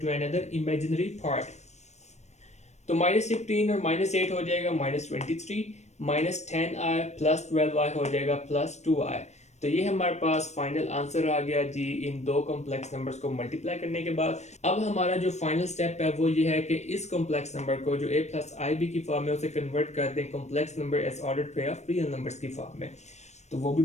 another imaginary part. तो -15 और -8 हो जाएगा -23, -10i +12i हो जाएगा +2i। तो ये हमारे पास फाइनल आंसर आ गया जी इन दो कॉम्प्लेक्स नंबर्स को मल्टीप्लाई करने के बाद। अब हमारा जो फाइनल स्टेप है वो ये है कि इस कॉम्प्लेक्स नंबर को जो a प्लस आई बी की फॉर्म है उसे कन्वर्ट कर दें complex number as ordered pair of real numbers की फॉर्म में। तो वो भी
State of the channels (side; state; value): right; late; 0.33 ms